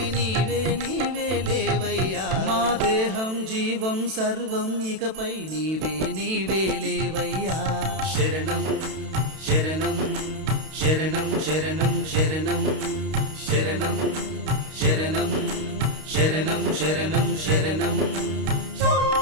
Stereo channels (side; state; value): left; late; 32 ms